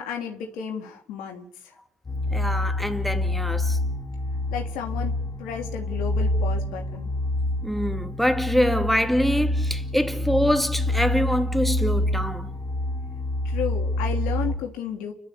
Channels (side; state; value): both; normal; correlation 0.72